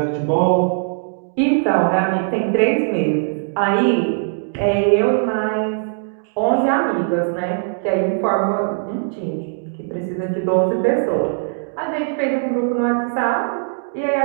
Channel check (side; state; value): left; silent; digital silence